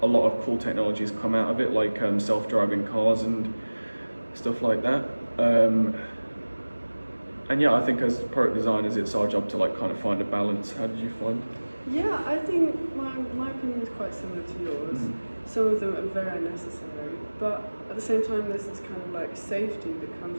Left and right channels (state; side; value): inverted; both; correlation -1.00